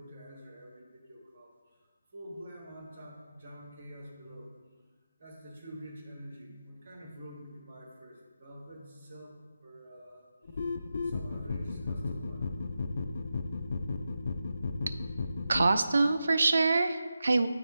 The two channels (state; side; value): inverted; both; correlation -0.90